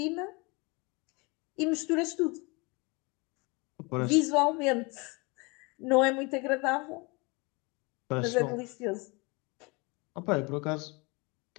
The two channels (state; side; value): quieter; right; 27.9 dB